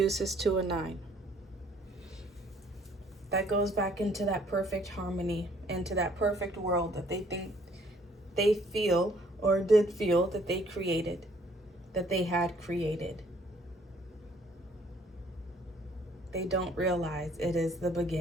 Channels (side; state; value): both; normal; correlation 0.61